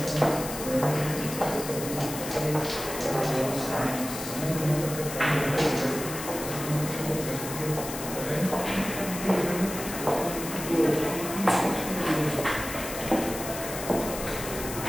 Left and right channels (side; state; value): left; noise; hiss, 8 dB below the sound